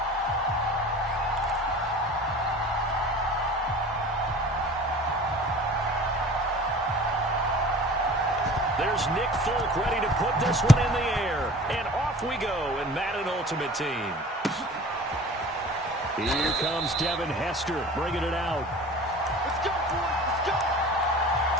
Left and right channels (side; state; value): both; normal; correlation 0.42